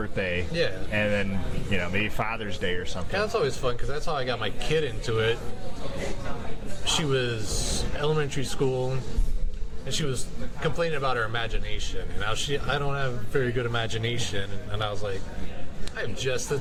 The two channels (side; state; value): both; identical; correlation 1.00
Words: Yeah. And then, maybe Father's Day or something. Yeah, that's always fun because that's how I got my kid into it. She was elementary school and she was complaining about her imagination. And now I don't have very good imagination. And I was like, I have just the